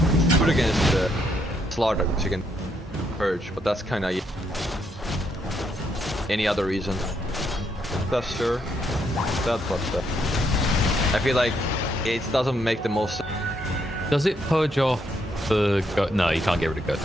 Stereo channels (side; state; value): both; normal; correlation 0.75